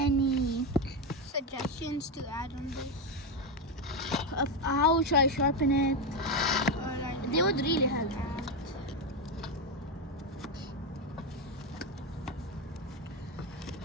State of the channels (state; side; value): normal; both; correlation 0.10